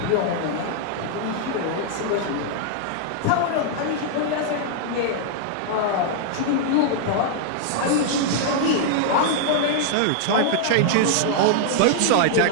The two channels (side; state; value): both; different; correlation -0.01